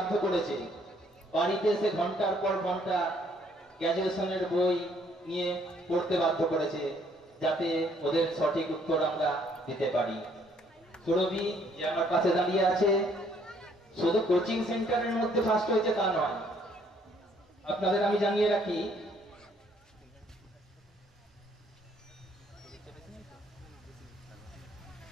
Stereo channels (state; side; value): normal; both; correlation 0.65